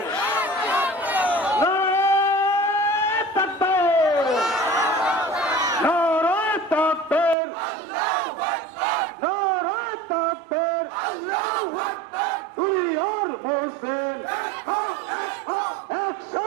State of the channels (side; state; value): left; drops out; at 7.4 s